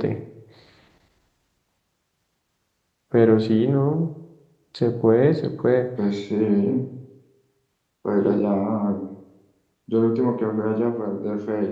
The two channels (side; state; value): both; identical; correlation 1.00